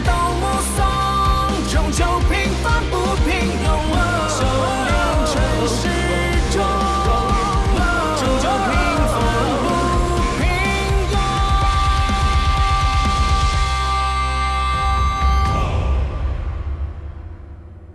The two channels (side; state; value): both; identical; correlation 1.00